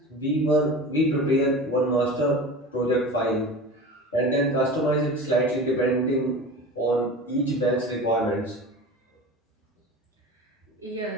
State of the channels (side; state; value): both; normal; correlation 0.33